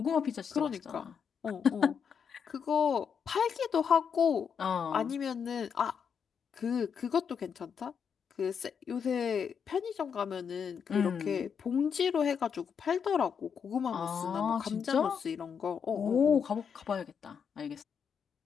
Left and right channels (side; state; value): right; quieter; 6.9 dB